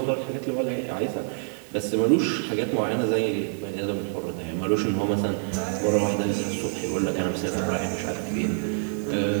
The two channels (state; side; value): silent; left; 61 dB below the other